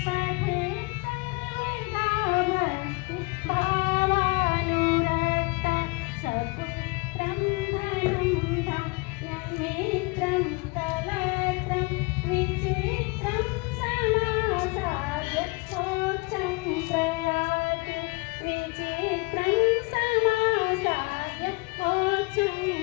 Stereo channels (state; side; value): quieter; right; 27.4 dB